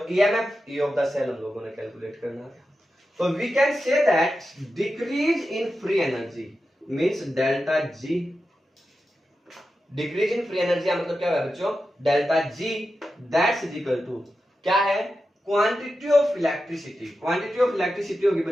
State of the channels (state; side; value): normal; both; correlation 0.91